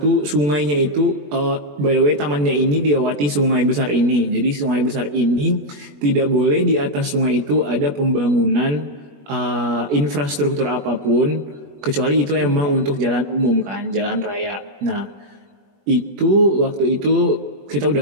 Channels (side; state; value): left; late; 21 ms